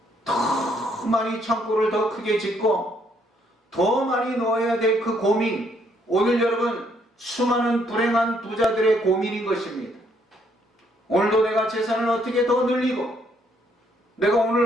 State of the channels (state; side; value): normal; both; correlation 0.69